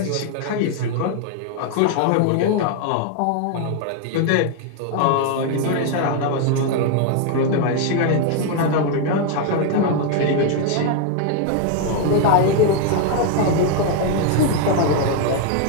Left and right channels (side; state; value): both; different; correlation 0.00